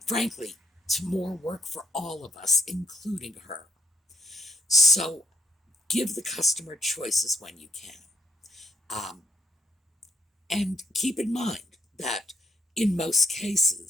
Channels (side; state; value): both; normal; correlation 0.75